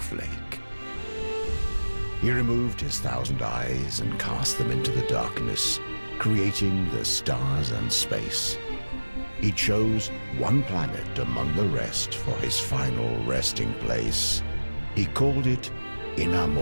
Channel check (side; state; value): both; inverted; correlation -1.00